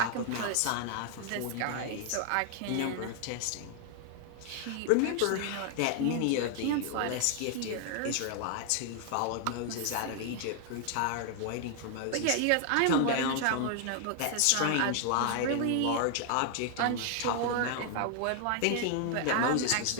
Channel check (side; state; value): both; different; correlation 0.00